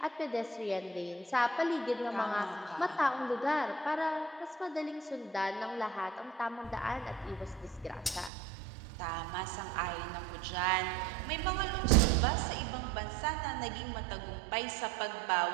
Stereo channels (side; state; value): left; drops out; at 8.3 s